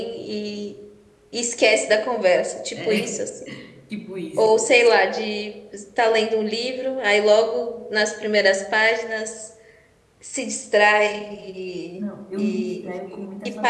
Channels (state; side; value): identical; both; correlation 1.00